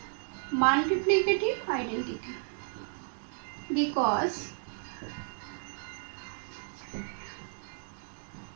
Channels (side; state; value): left; silent; digital silence